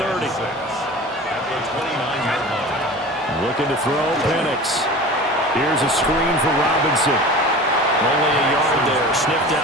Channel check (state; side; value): normal; both; correlation 0.37